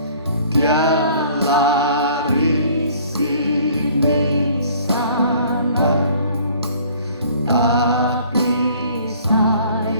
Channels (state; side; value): inverted; both; correlation -0.54